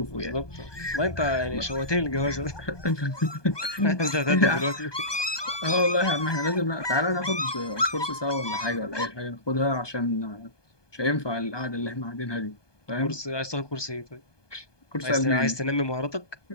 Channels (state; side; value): late; right; 1.2 ms